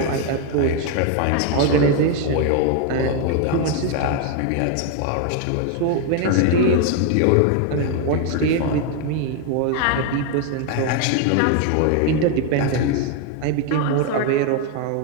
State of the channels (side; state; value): both; different; correlation 0.01